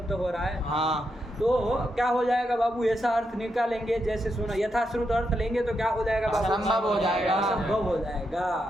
हो रहा है। हाँ। तो क्या हो जाएगा बाबू? ऐसा अर्थ निकालेंगे जैसे सुना, यथाश्रुत अर्थ लेंगे तो क्या हो जाएगा बाबू? असंभव हो जाएगा। असंभव हो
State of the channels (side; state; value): both; normal; correlation 0.83